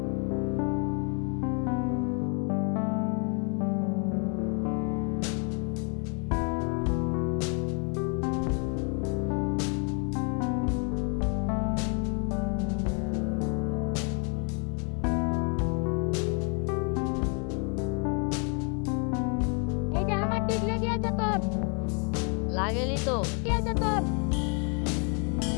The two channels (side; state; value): right; quieter; 37.6 dB